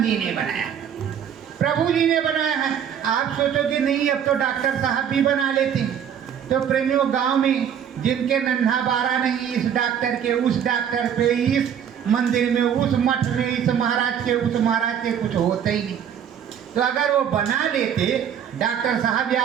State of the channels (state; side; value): quieter; left; 8.7 dB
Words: जी ने बनाया, प्रभु जी ने बनाया है। आप सोचोगे नहीं अब तो डॉक्टर साहब भी बना लेते हैं। तो प्रेमियों, गांव में जिनके नन्हा बारा नहीं, इस डॉक्टर के उस डॉक्टर पे, इस मंदिर में उस मठ में, इस महाराज के उस महाराज के कुछ होते ही नहीं। तो अगर वो बना लेते डॉक्टर साहब